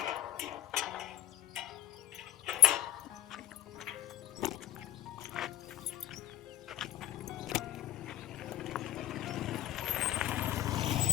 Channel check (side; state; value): right; quieter; 14.0 dB